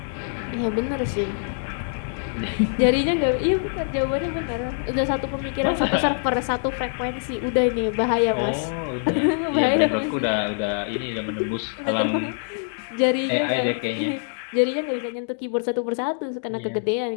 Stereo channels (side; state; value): right; silent; digital silence